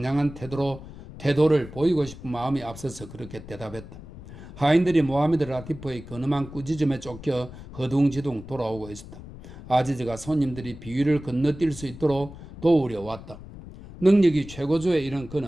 태도를 보이고 싶은 마음이 앞서서 그렇게 대답했다. 하인들이 모하메드 라티프의 근엄한 꾸짖음에 쫓겨 허둥지둥 돌아오고 있었다. 아지즈가 손님들이 비위를 건너뛸 수 있도록 도우려 왔다. 능력이 최고조에 이른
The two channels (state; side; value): noise; left; rumble, 15 dB below the sound